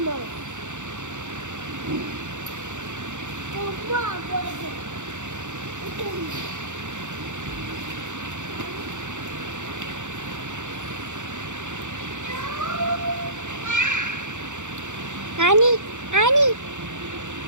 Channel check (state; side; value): late; left; 0.85 ms